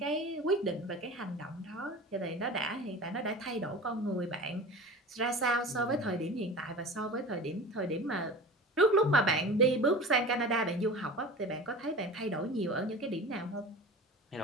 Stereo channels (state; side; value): normal; both; correlation 0.35